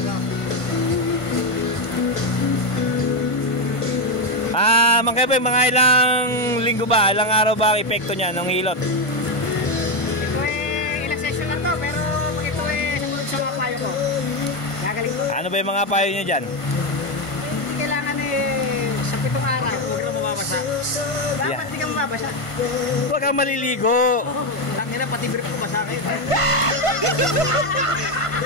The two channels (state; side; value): late; right; 1.5 ms